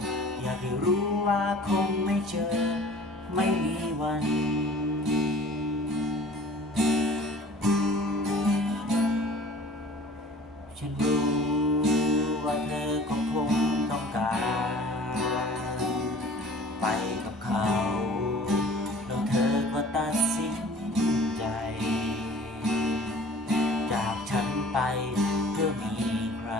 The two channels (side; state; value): both; normal; correlation 0.46